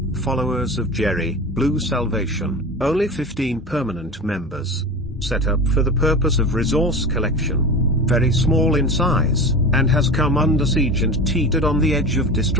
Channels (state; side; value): normal; both; correlation 0.30